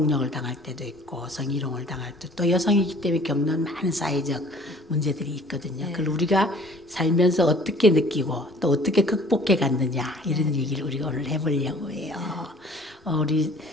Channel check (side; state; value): both; normal; correlation 0.52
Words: 당할 때도 있고 성희롱을 당할 때도 또 여성이기 때문에 겪는 많은 사회적 문제들이 있거든요. 그걸 우리가 살면서 어떻게 느끼고 또 어떻게 극복해 갔느냐 이런 얘기를 우리가 오늘 해보려고 해요. 우리